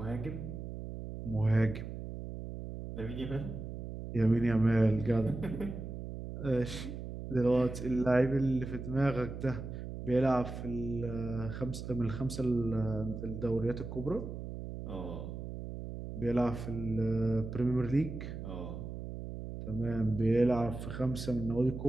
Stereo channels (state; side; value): noise; right; hum, 8 dB below the sound